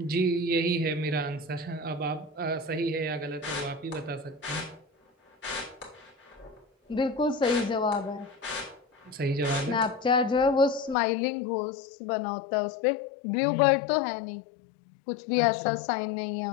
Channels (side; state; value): right; drops out; at 11.0 s